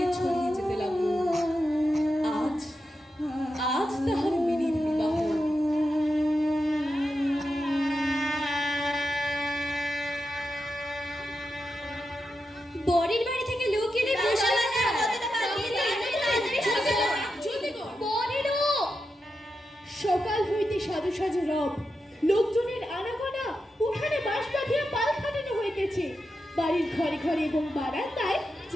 ছড়িয়ে যেতে লাগল। আজ আজ তাহার মিনির বিবাহ। বরের বাড়ি থেকে লোক এলে বসে সকাল হইতে সাজু সাজু রব, লোকজনের আনাগোনা, উঠানে বাঁশ বাঁধিয়া পাল খাটানো হইতেছে। বাড়ির ঘরে ঘরে এবং বারান্দায়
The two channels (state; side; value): normal; both; correlation 0.88